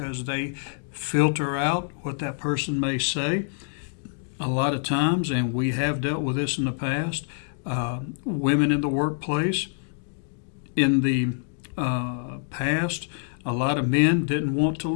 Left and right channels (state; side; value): silent; right; 61 dB below the other